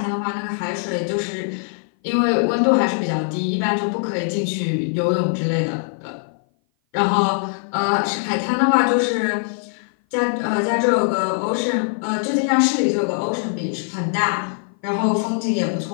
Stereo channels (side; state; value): right; silent; 57 dB below the other